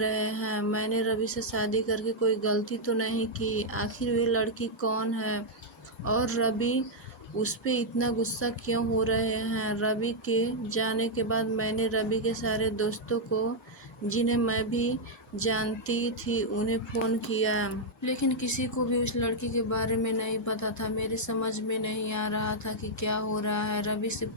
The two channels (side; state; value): both; normal; correlation -0.04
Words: हैं? मैंने रवि से शादी करके कोई गलती तो नहीं की? आखिर वे लड़की कौन है और रवि उस पे इतना गुस्सा क्यों हो रहे हैं? रवि के जाने के बाद मैंने रवि के सारे दोस्तों को, जिन्हें मैं भी जानती थी, उन्हें फ़ोन किया, लेकिन किसी को भी उस लड़की के बारे में नहीं पता था। मेरी समझ में नहीं आ रहा था कि क्या हो रहा है। रवि से